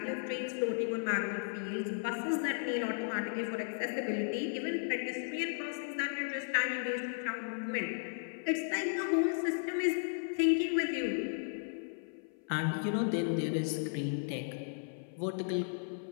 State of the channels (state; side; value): silent; right; 54 dB below the other